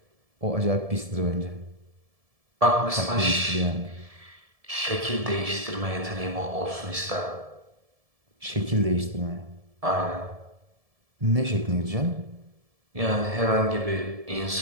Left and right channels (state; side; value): late; left; 1.7 ms